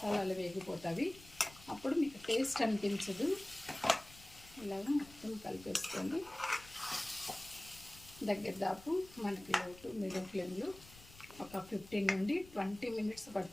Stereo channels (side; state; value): left; noise; rumble, 20 dB below the sound